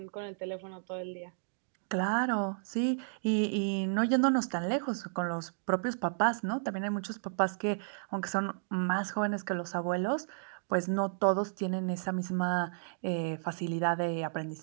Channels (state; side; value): silent; left; digital silence